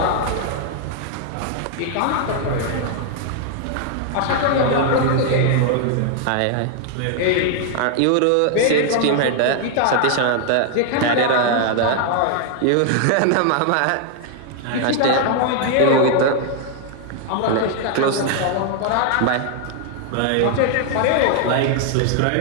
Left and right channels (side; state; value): both; different; correlation 0.00